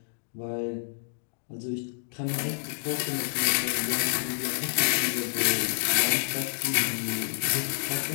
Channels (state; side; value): silent; right; digital silence